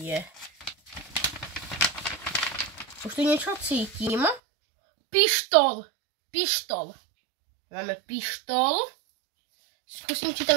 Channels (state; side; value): drops out; left; at 4.4 s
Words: Už tu niečo cítim. Pištol. Pištol. Máme pištol. Skúsim, či tam